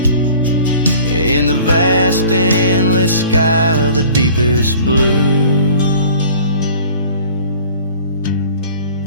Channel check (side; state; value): both; inverted; correlation -0.47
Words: in the vast endless sky of the deepest blue.